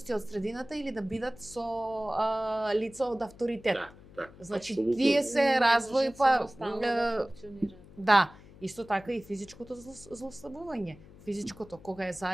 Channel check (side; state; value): left; noise; hum, 21 dB below the sound